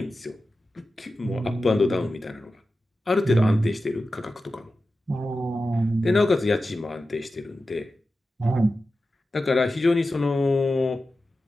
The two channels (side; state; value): both; normal; correlation 0.93